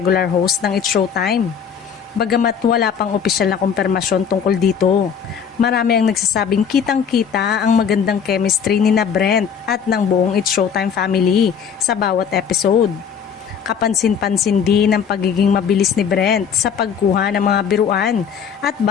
host ng It's Showtime. Bagamat wala pang opisyal na kumpirmasyon tungkol dito, marami ang nagsasabing kitang-kita ang magandang chemistry ni na Brent at ng buong It's Showtime family sa bawat episode. Kapansin-pansin din ang pagiging mabilis ni Brent sa pagkuha ng mga biruan at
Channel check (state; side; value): quieter; right; 7.3 dB